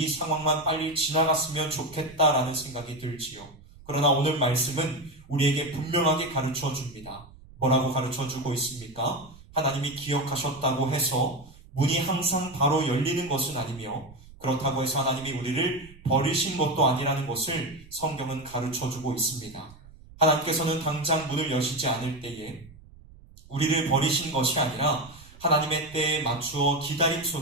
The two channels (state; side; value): noise; right; rumble, 21 dB below the sound